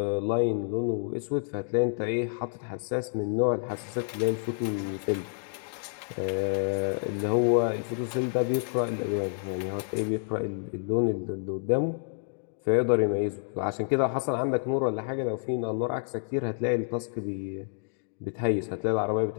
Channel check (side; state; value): right; silent; digital silence